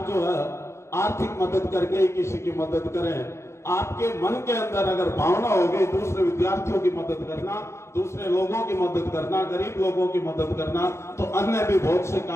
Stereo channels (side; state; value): right; late; 0.13 ms